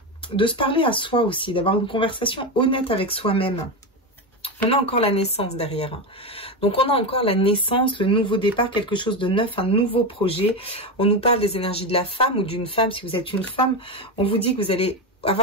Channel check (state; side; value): normal; both; correlation 0.14